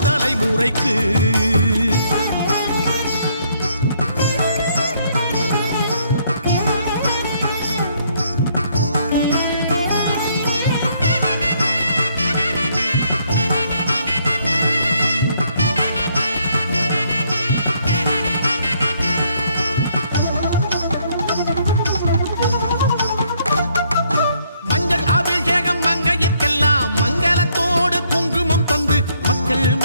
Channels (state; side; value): inverted; both; correlation -0.69